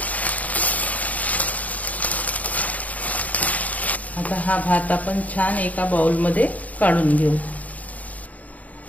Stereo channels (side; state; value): right; late; 0.072 ms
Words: आता हा भात आपण छान एका बाउलमध्ये काढून घेऊ.